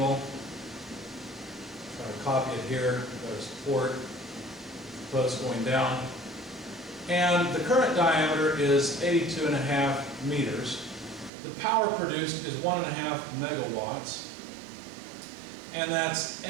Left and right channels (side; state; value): left; drops out; at 11.3 s